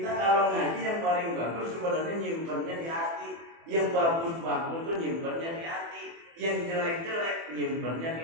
kalau ngaji yang paling bagus sebenarnya nyimpennya di hati. Yang bagus-bagus tuh nyimpennya di hati. Yang jelek-jelek nyimpennya di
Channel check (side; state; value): left; late; 24 ms